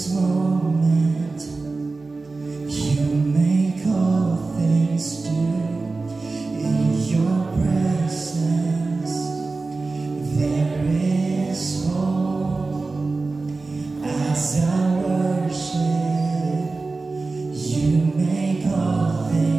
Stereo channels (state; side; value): quieter; left; 3.7 dB